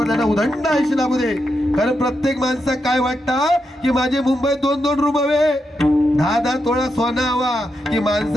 त्यांना उदंड आयुष्य लाभू दे. कारण प्रत्येक माणसाक काय वाटतं की माझे मुंबईत 2-2 रूम हवे, 10-10 तोळा सोना हवा, की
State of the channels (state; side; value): normal; both; correlation 0.85